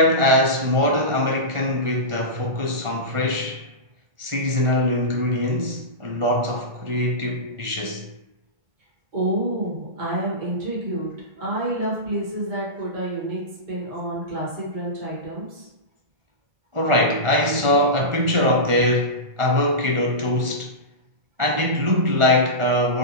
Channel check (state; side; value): late; left; 1.4 ms